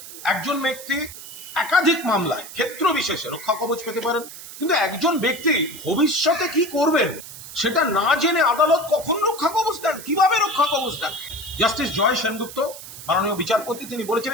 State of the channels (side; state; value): right; noise; hiss, 14 dB below the sound